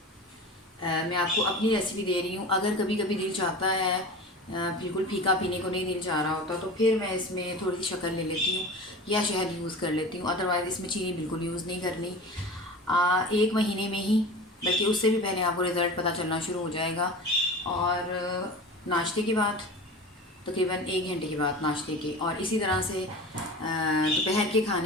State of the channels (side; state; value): both; normal; correlation 0.34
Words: मैं आपको अपनी रेसिपी दे रही हूँ। अगर कभी कभी दिल चाहता है बिल्कुल फीका पीने को नहीं दिल चाह रहा होता, तो फिर मैं इसमें थोड़ी सी शक्कर ले लेती हूँ या शहद यूज़ कर लेती हूँ। अदरवाइज़ इसमें चीनी बिल्कुल यूज़ नहीं करनी। 1 महीने में ही, बल्कि उससे भी पहले आपको रिज़ल्ट पता चलना शुरू हो जाएगा। और नाश्ते के बाद, तकरीबन 1 घंटे के बाद नाश्ते के, और इसी तरह से दोपहर के